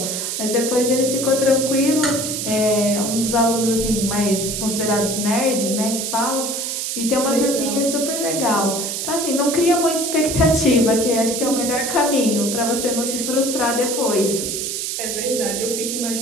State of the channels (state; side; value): noise; right; hiss, 3 dB below the sound